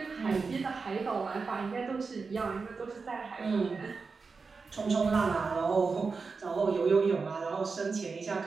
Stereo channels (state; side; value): quieter; left; 4.7 dB